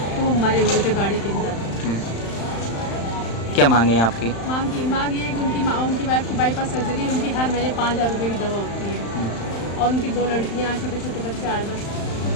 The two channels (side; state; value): right; late; 35 ms